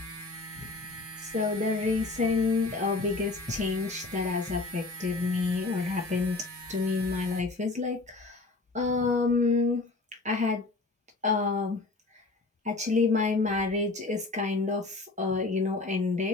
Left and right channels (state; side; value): quieter; right; 3.5 dB